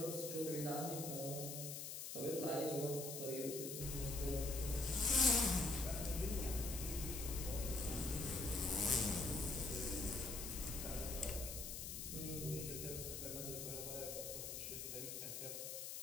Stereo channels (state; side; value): noise; left; hiss, 5 dB below the sound